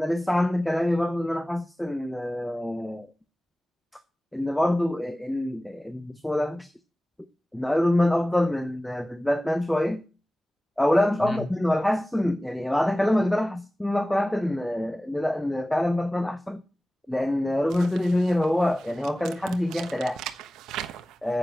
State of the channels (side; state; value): both; normal; correlation 0.97